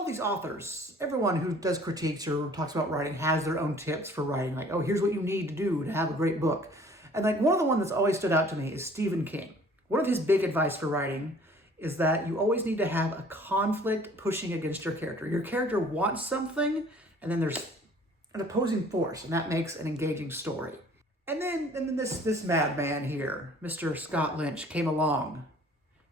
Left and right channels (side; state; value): both; normal; correlation 0.53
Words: these authors, everyone who does critiques or talks about writing has their own tips for writing, like, oh, here's what you need to do to have a great book. And, like, one of the ones that's always stood out to me is Stephen King. One of his big advice for writing is that you always need to have a conflict pushing against your character. Your character wants something, and then there's an opposing force, and that makes an engaging story. And then this madman here, Mr. Scott Lynch, came along